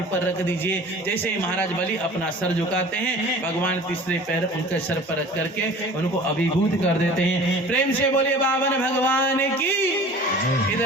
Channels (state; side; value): normal; both; correlation 0.44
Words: पर रख दीजिए। जैसे ही महाराज बलि अपना सर झुकाते हैं, भगवान तीसरे पैर उनके सर पर रख करके उनको अभिभूत कर देते हैं। प्रेम से बोलिए बावन भगवान की।